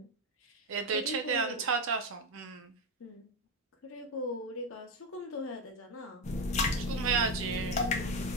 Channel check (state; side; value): normal; both; correlation 0.11